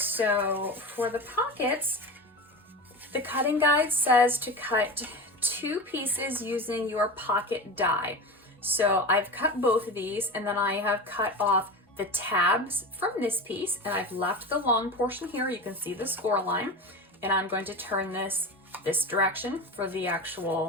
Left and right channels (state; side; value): normal; both; correlation 0.26